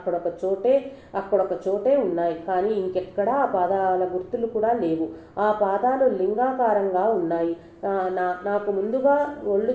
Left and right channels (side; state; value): both; identical; correlation 1.00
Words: చోటే ఉన్నాయి. కానీ ఇంకెక్కడా ఆ పాదాల గుర్తులు కూడా లేవు. ఆ పాదాలు లింగాకారంగా ఉన్నాయి. నాకు ముందుగా ఒళ్ళు